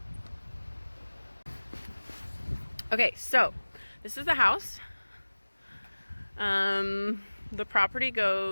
Okay, so this is the house. The property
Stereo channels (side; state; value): both; inverted; correlation -1.00